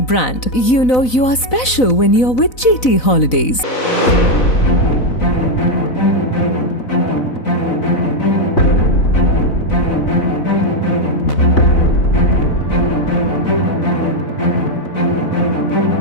brand. You know you are special when you're with GT Holidays.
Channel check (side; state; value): right; late; 4.0 ms